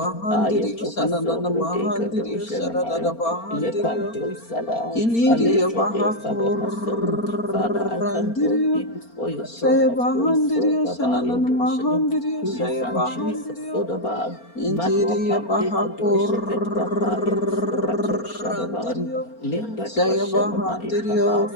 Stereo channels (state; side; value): late; right; 4.3 ms